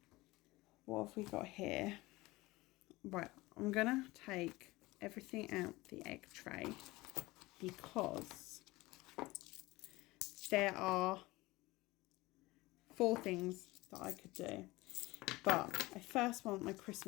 What have we got here? Right, I'm going to take everything out the egg tray because there are 4 things that I could do. But I first want my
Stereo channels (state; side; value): quieter; right; 20.5 dB